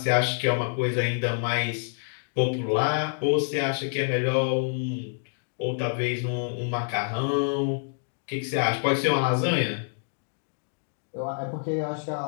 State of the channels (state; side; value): silent; right; digital silence